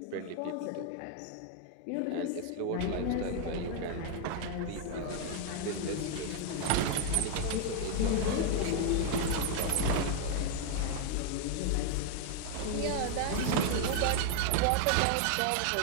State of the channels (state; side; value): different; both; correlation 0.00